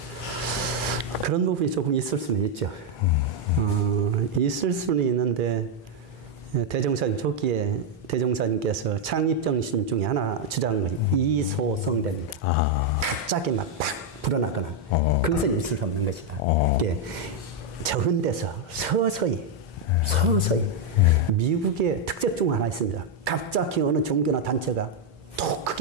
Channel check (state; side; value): normal; both; correlation 0.01